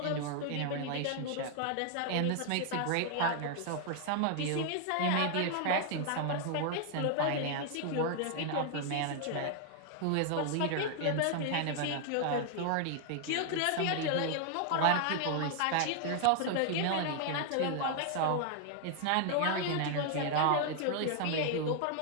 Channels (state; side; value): different; both; correlation 0.00